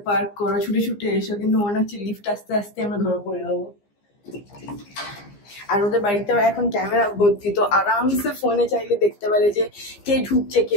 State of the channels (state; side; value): late; right; 15 ms